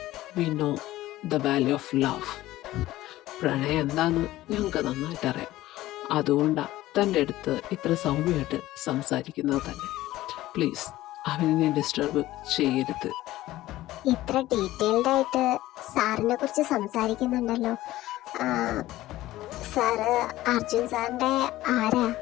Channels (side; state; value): right; quieter; 16.0 dB